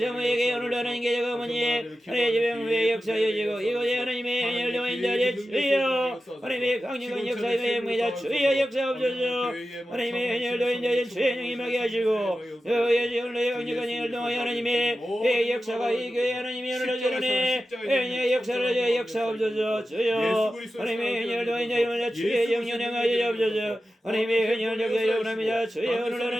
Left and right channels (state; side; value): normal; both; correlation 0.93